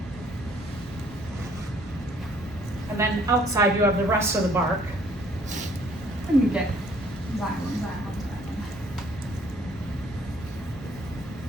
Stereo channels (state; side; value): normal; both; correlation 0.60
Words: And then outside you have the rest of the bark. And you get xylem.